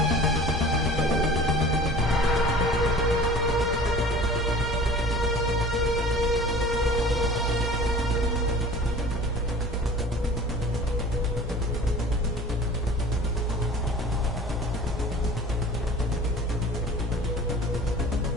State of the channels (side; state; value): both; normal; correlation 0.43